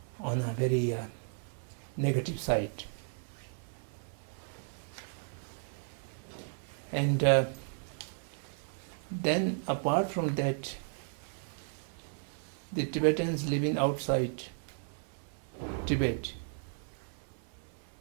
on a very negative side. And then apart from that, the Tibetans living outside Tibet,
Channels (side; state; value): left; silent; 55 dB below the other